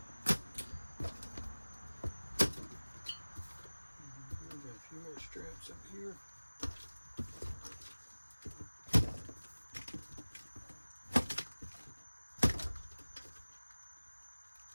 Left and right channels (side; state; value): both; inverted; correlation -1.00